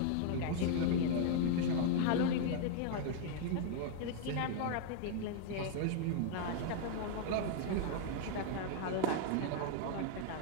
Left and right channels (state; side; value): different; both; correlation 0.00